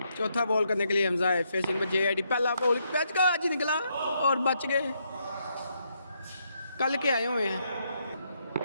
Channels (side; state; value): both; inverted; correlation -0.77